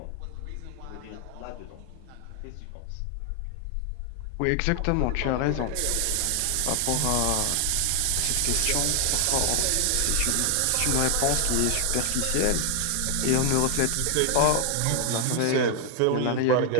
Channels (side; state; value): both; different; correlation 0.00